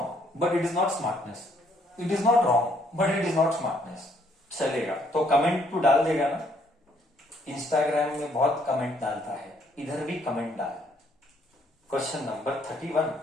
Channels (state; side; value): normal; both; correlation 0.67